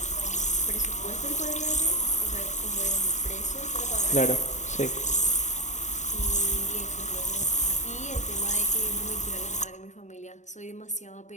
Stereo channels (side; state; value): right; late; 0.34 ms